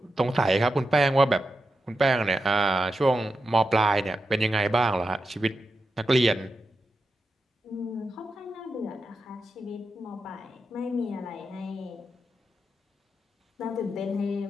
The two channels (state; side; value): normal; both; correlation 0.88